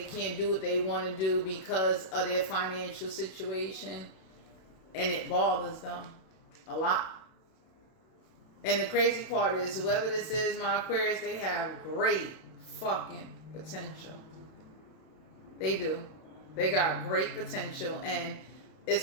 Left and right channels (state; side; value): late; right; 32 ms